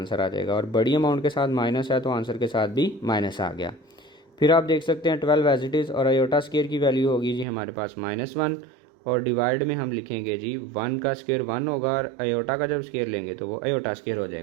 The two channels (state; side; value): drops out; left; at 7.5 s